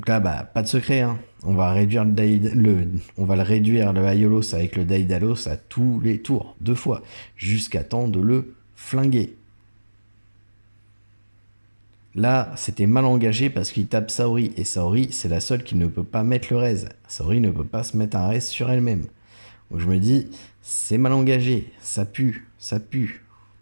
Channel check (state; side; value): inverted; both; correlation -1.00